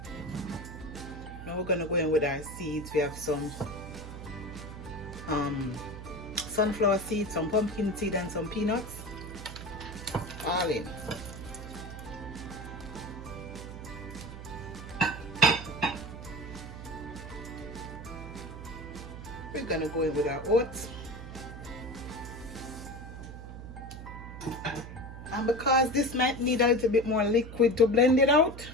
Now we're gonna go in with our seeds. We have some sunflower seeds, some pumpkin seed, and some peanuts. All in. We're gonna go in with our oats. And because this might need a little bit more liquid to blend it out,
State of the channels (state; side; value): noise; right; hum, 11 dB below the sound